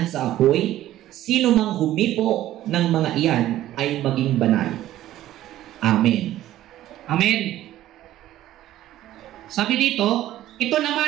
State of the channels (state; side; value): quieter; left; 13.8 dB